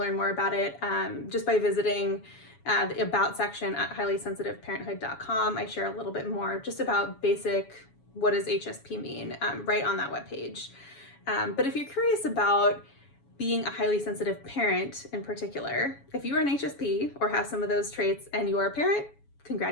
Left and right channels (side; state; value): right; late; 7.2 ms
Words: more about it just by visiting the About section at highlysensitiveparenthood.com. I share a little bit more just about basic, what does HSP mean, right on that webpage. But if you're curious about being a highly sensitive parent in particular, if you are an HSP or have some of those traits and you are a parent,